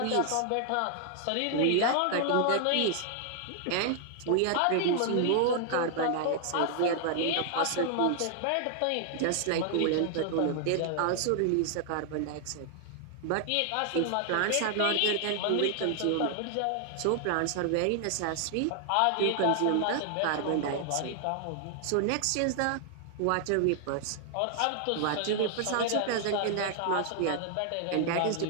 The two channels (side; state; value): both; different; correlation 0.00